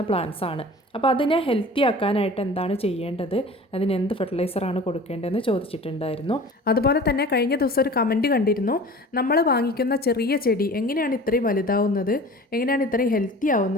പ്ലാന്റ്സ് ആണ്. അപ്പോൾ അതിനെ ഹെൽത്തി ആക്കാനായിട്ട് എന്താണ് ചെയ്യേണ്ടത്, അതിന് എന്ത് ഫെർട്ടിലൈസറാണ് കൊടുക്കേണ്ടതെന്ന് ചോദിച്ചിട്ടുണ്ടായിരുന്നു. അതുപോലെ തന്നെ കഴിഞ്ഞ ദിവസം ഒരു കമൻറ്റ് കണ്ടിരുന്നു, നമ്മൾ വാങ്ങിക്കുന്ന ചെറിയ ചെടി എങ്ങനെയാണ് ഇത്രയും വലുതാവുന്നത്, എങ്ങനെയാണ് ഇത്രയും ഹെൽത്തി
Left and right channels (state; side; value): normal; both; correlation 0.41